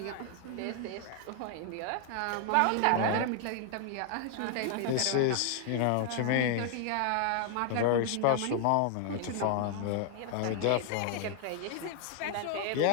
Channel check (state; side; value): different; both; correlation 0.00